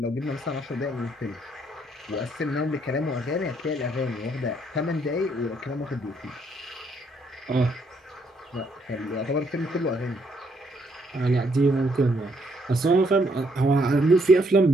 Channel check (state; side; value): normal; both; correlation 0.71